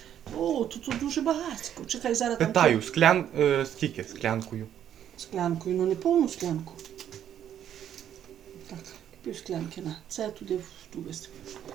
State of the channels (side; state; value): left; quieter; 10.1 dB